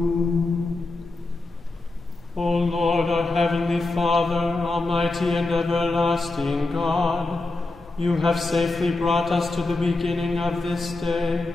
O Lord, our heavenly Father, almighty and everlasting God, you have safely brought us to the beginning of this day.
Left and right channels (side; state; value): right; quieter; 3.1 dB